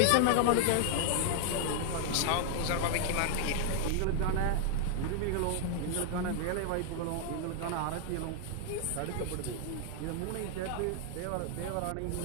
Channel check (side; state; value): both; different; correlation 0.00